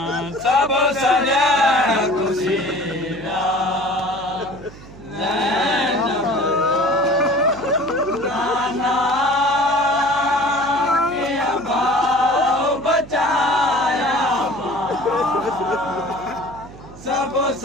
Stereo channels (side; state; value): right; noise; hum, 18 dB below the sound